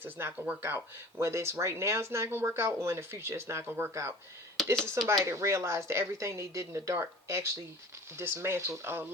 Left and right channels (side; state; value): both; normal; correlation 0.43